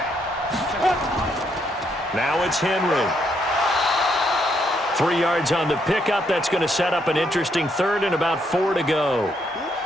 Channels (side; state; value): both; normal; correlation 0.74